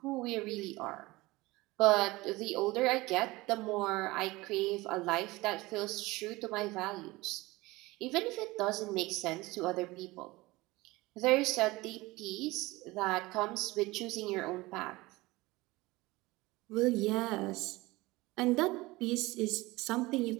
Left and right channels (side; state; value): left; quieter; 20.9 dB